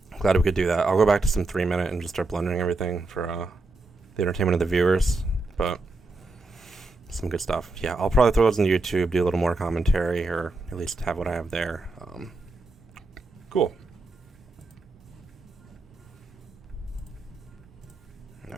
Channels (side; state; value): left; quieter; 3.2 dB